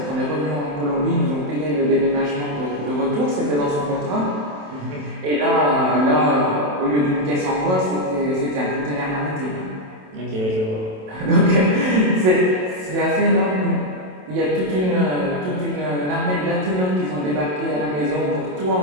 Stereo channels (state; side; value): late; left; 27 ms